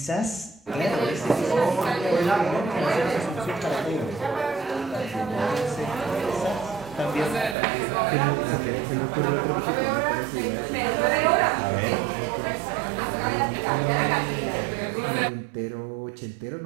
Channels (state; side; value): drops out; left; at 7.6 s